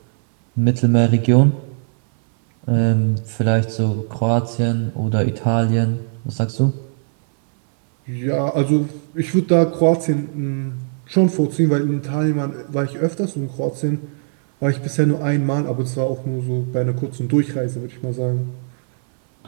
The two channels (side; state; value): left; silent; 60 dB below the other